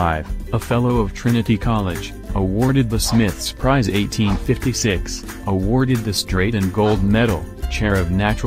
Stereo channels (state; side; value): identical; both; correlation 1.00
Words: a Fellow of Trinity College, awarded the Smiths Prize 1856, awarded the Straight and Gold Medal, Chair of